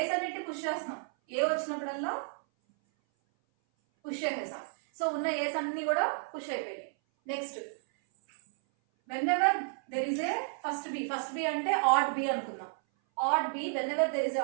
అన్నిటి పుష్ చేస్తున్నాం, ఏ వచ్చినప్పుడల్లా పుష్ చేసేసాం. సో ఉన్న ఏస్ అన్ని కూడా పుష్ అయిపోయినాయి. Next whenever there is a first b అంటే odd b అనుకుందాం. odd b, whenever there is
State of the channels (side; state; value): left; silent; 56 dB below the other